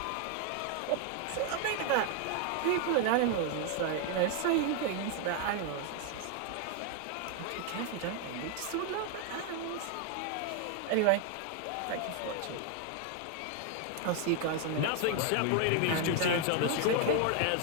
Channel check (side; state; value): both; different; correlation 0.00